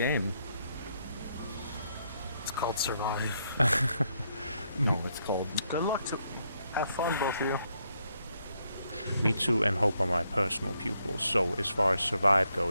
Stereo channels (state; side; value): inverted; both; correlation -0.76